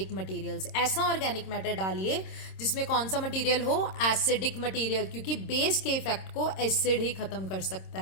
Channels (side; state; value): right; late; 26 ms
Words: मटेरियल्स। ऐसा ऑर्गेनिक मैटर डालिए जिसमें कौन सा मटेरियल हो? एसिडिक मटेरियल, क्योंकि बेस के इफेक्ट को एसिड ही खत्म कर सकता